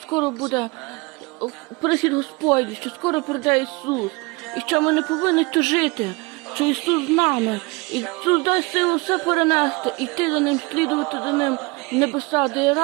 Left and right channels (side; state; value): left; quieter; 26.3 dB